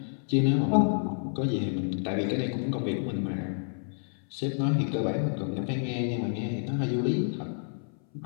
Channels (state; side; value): silent; right; 58 dB below the other